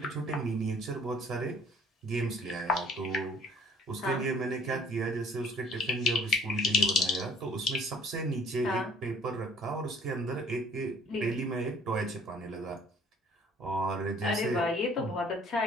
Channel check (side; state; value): both; normal; correlation 0.56